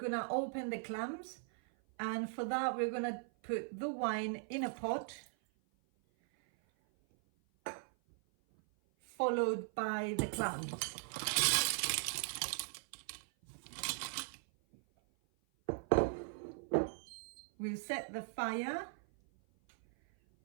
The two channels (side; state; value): left; silent; 52 dB below the other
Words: open the clams, and for that we're gonna put the wine in a pot, followed by the clams. We'll set the fire